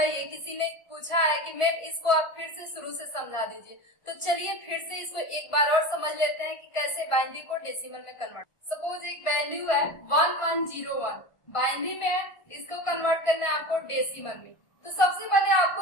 है, किसी ने पूछा है कि मैम इसको आप फिर से शुरू से समझा दीजिए। तो चलिए फिर से इसको एक बार और समझ लेते हैं कि कैसे बाइनरी को डेसिमल में कन्वर्ट। सपोज एक वैल्यू है 1101, बाइनरी में है, इसको कन्वर्ट करना है आपको डेसिमल में। तो सबसे पहले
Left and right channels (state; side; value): late; right; 1.5 ms